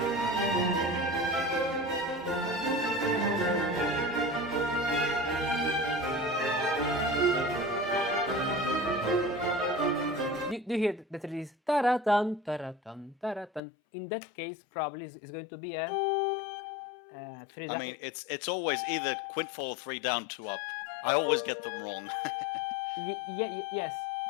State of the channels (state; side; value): drops out; right; at 13.6 s